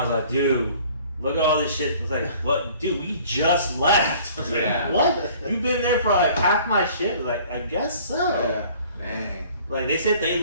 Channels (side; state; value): both; inverted; correlation -0.52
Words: was like, dude, look at all this shit. I was like, what? Dude, we just left. I was like, what? You've been there for like half my shit? I was like, I guess so. Yeah. Dang. Like, they said they